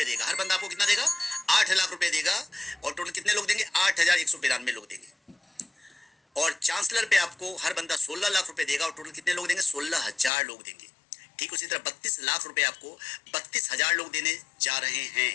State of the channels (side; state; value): right; drops out; at 10.3 s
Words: देगा। हर बंदा आपको कितना देगा? 8 लाख रुपए देगा। और टोटल कितने लोग देंगे? 8192 लोग देंगे। और चांसलर पे आपको हर बंदा 16 लाख रुपए देगा, और टोटल कितने लोग देंगे? 16,000 लोग देंगे। ठीक उसी तरह 32 लाख रुपए आपको 32,000 लोग देने जा रहे